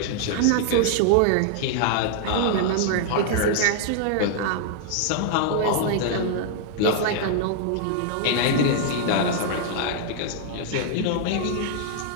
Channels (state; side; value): different; both; correlation -0.01